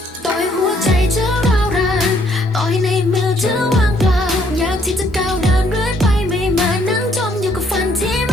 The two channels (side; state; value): both; normal; correlation 0.67